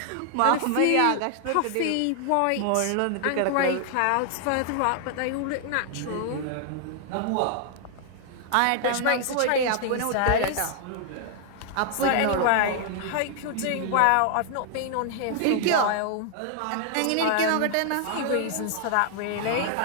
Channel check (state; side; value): different; both; correlation 0.00